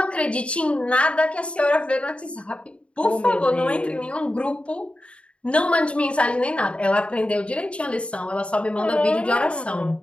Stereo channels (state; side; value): late; right; 0.060 ms